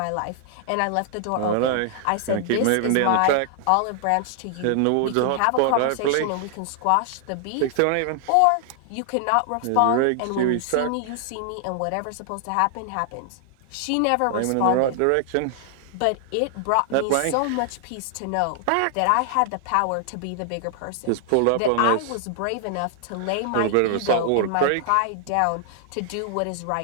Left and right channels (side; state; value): both; different; correlation 0.00